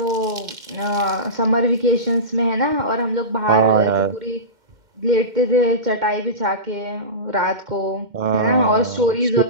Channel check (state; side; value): late; left; 2.1 ms